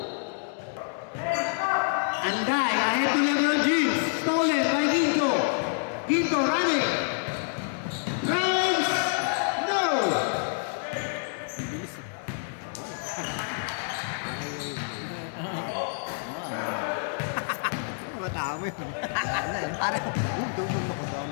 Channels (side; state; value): right; silent; digital silence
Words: Andai. Ahead to LeBron James. Stolen by Ginto. Ginto running. Runs. No. Madami.